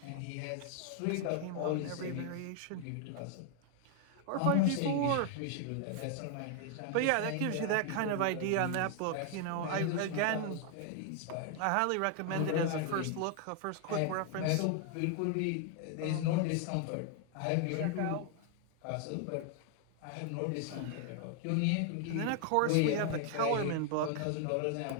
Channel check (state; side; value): different; both; correlation 0.00